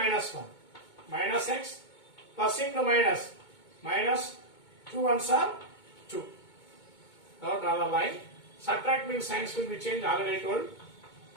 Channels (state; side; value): late; right; 2.2 ms